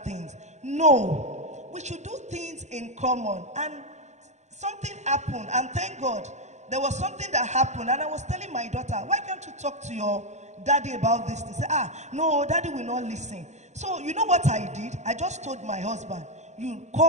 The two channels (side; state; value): left; late; 0.33 ms